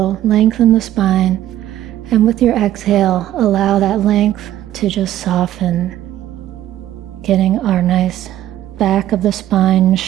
lengthen the spine, and with your exhale, allow that length to just soften, getting our nice back of the spine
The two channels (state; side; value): quieter; left; 12.9 dB